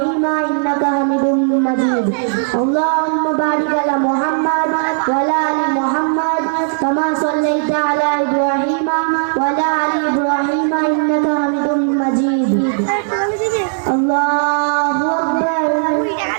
إنك حميد مجيد. اللهم بارك على محمد وعلى آل محمد كما صليت على إبراهيم وعلى آل إبراهيم إنك حميد مجيد. الله أكبر.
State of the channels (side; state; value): left; silent; digital silence